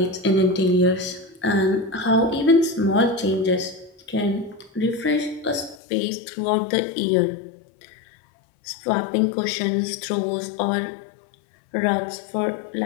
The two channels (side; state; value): right; drops out; at 5.8 s